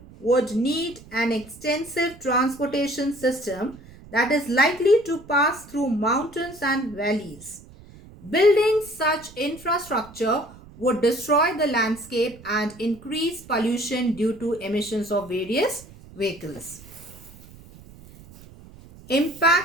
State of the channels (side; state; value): right; noise; rumble, 20 dB below the sound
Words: would need an extensive transportation system that is likely to pass through mountains and valleys. Building such infrastructure would destroy the landscape and increase pollution due to emissions of various vehicles.